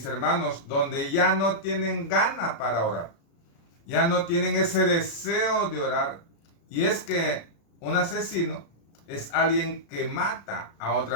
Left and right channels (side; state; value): right; late; 36 ms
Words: hermanos, donde ya no tienen gana para orar. Ya no tienen ese deseo de orar. Y es que un asesino es alguien que mata a